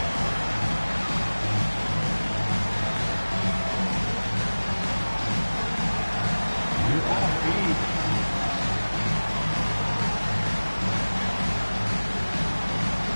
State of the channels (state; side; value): inverted; both; correlation -1.00